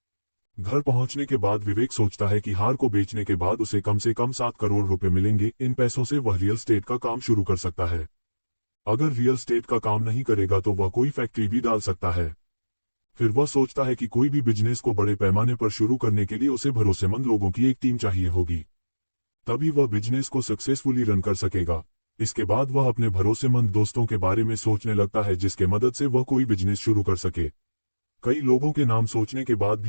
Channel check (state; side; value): inverted; both; correlation -1.00